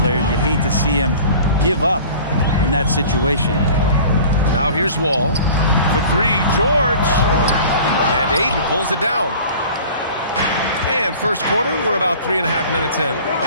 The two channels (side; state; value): both; inverted; correlation -0.44